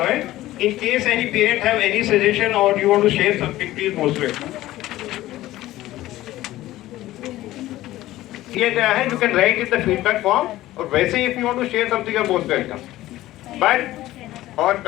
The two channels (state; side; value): quieter; right; 15.8 dB